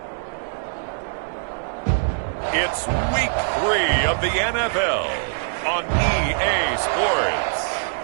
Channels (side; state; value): left; silent; digital silence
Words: it's Week 3 of the NFL on EA Sports.